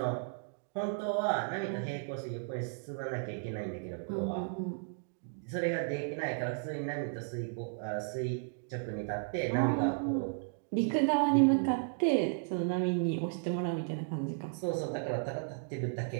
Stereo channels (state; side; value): silent; left; digital silence